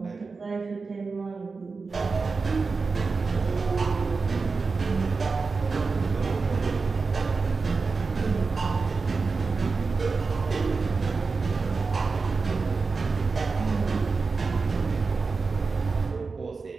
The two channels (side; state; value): left; quieter; 4.4 dB